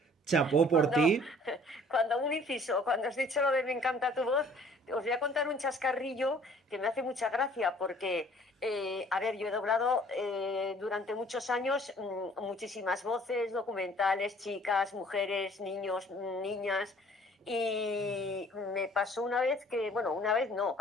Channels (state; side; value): normal; both; correlation 0.55